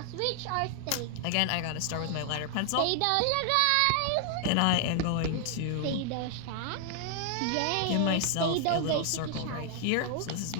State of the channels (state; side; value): different; both; correlation 0.00